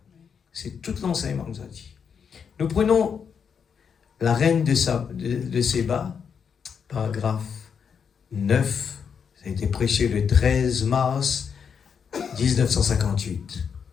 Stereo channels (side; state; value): right; quieter; 6.8 dB